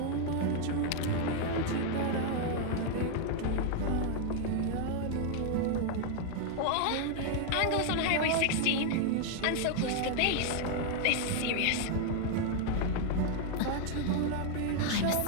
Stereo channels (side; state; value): both; different; correlation 0.00